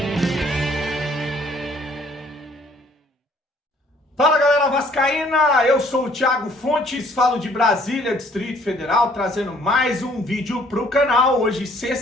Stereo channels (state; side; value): normal; both; correlation 0.60